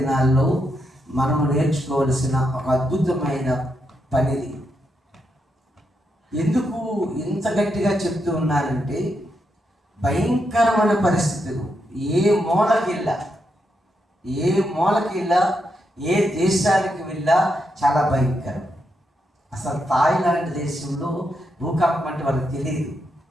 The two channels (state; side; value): normal; both; correlation 0.82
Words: మనము నేర్చుకోవలసిన ఒక అద్భుతమైన పనిది. ఎందుకు ఇంత గట్టిగా చెప్తూ ఉన్నానంటే, భయంకరమైన పరిస్థితులు ఏ మూలకి వెళ్ళా ఏ దేశానికి వెళ్ళా చాలా భయంకరం. అసలు థాయిలాండ్ దేశంలో భూకంపం అంటే వాళ్ళకి తెలియదు.